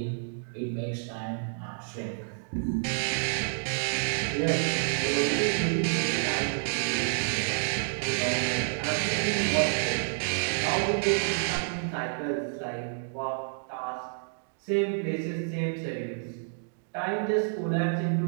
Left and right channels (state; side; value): silent; left; digital silence